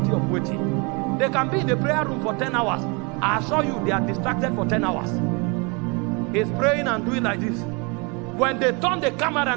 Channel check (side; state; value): left; quieter; 30.8 dB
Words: of waiting. They can be in the prayer room for 10 hours. I assure you, they are distracted for 10 hours. He's praying and doing like this. When they turn the camera